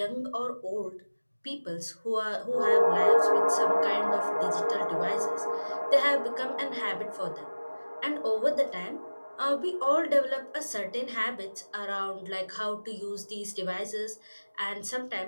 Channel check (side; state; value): both; inverted; correlation -1.00